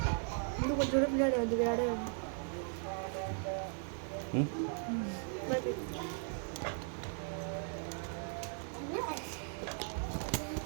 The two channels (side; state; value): left; silent; 53 dB below the other